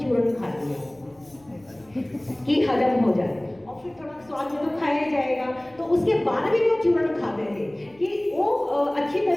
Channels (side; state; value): left; noise; hum, 30 dB below the sound